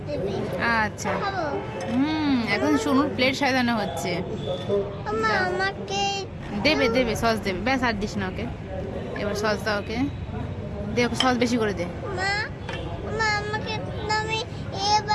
দেবে। আচ্ছা খাবো। এখন সোনুর প্লেট সাজানো হচ্ছে। আমাকে দেবে দেবে সস দেবে, ব্যাস আর দিস না ওকে। এবার সস দাও ওকে, দে ওকে সস বেশি করে দে। মা মা আমাকে তুমি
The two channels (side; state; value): both; identical; correlation 1.00